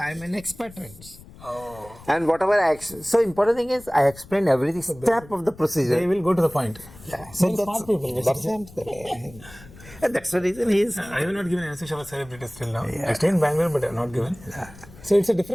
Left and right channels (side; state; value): left; noise; rumble, 20 dB below the sound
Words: an expert. Oh. And whatever so important thing is I explained every step of the procedure. They will go to the point. Yeah. So smart people. And that's the reason he is. I have not given anesthesia for celebrities till now. Yeah. I stay in Bangalore, but I have not given. Yeah. So it's a